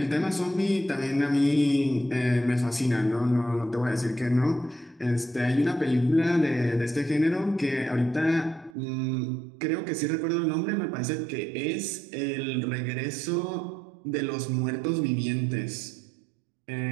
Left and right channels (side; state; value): left; drops out; at 8.7 s